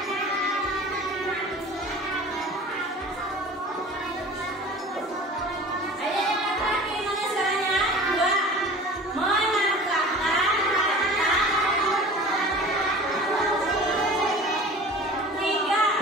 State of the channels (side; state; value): both; normal; correlation 0.41